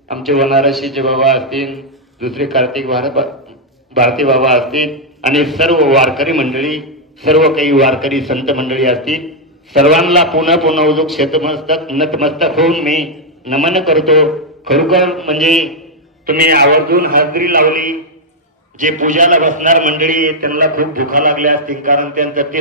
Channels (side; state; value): both; normal; correlation -0.03